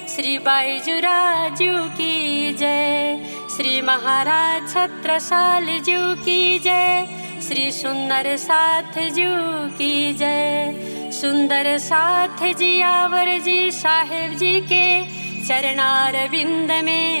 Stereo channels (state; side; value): inverted; both; correlation -1.00